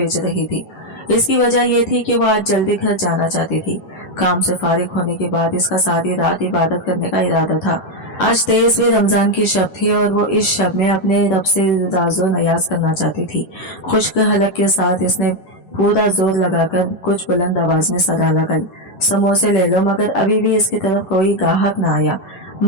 रही थी। इसकी वजह यह थी कि वो आज जल्दी घर जाना चाहती थी। काम से फारिग होने के बाद इसका सारी रात इबादत करने का इरादा था। आज 23वें रमजान की शब थी और वो इस शब में अपने रब से राजो नयाज करना चाहती थी। खुश्क हलक के साथ इसने पूरा जोर लगाकर कुछ बुलंद आवाज में सदा लगाई, समोसे ले लो, मगर अभी भी इसकी तरफ कोई गाहक न आया।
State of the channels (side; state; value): right; late; 10 ms